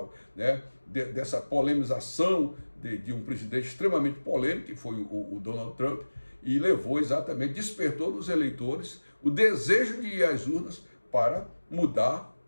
né? Dessa polemização de um presidente extremamente polêmico, que foi o Donald Trump, e despertou nos eleitores o desejo de ir às urnas para mudar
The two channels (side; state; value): both; inverted; correlation -1.00